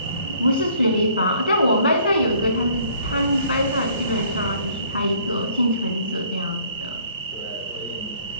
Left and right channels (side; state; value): both; inverted; correlation -0.59